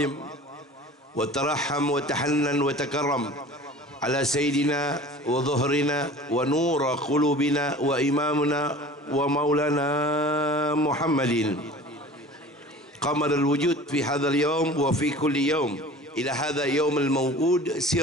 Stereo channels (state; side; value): normal; both; correlation 0.42